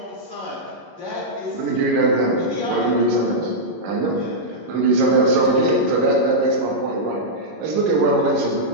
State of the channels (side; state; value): left; late; 11 ms